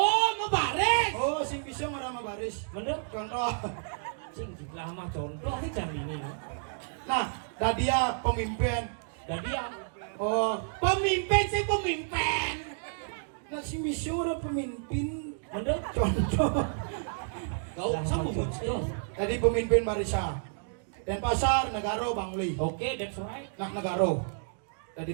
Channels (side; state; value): left; silent; digital silence